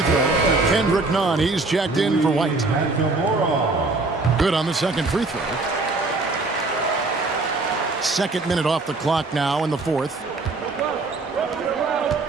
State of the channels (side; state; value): left; quieter; 3.5 dB